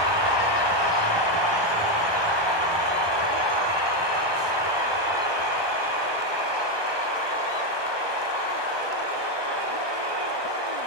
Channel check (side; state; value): left; late; 1.2 ms